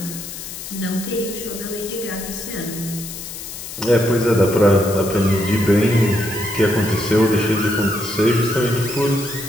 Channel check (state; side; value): noise; left; hiss, 10 dB below the sound